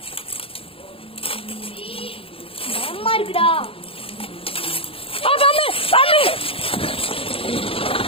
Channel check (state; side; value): late; right; 0.27 ms